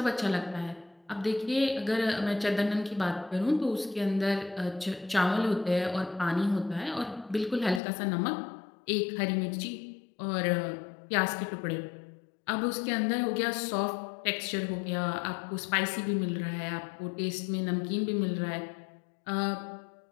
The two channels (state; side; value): drops out; right; at 7.8 s